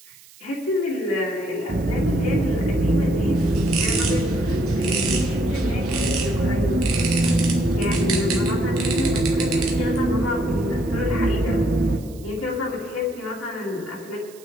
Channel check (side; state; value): right; noise; hiss, 23 dB below the sound